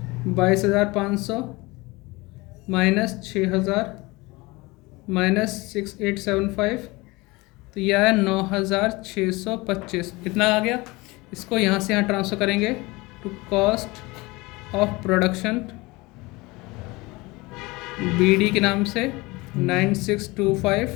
22,500 माइनस 6,000 माइनस 6,875, तो यह है 9,625। इतना आ गया। इसको यहाँ से यहाँ ट्रांसफ़र करेंगे to cost of production BD के नाम से 9625।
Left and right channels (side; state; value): right; quieter; 23.1 dB